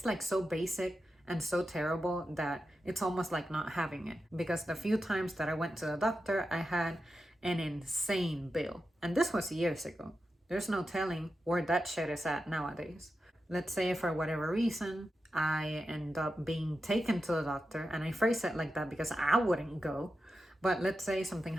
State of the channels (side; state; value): both; normal; correlation 0.90